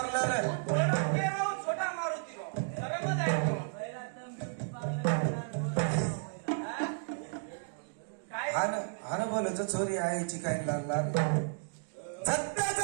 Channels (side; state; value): left; silent; digital silence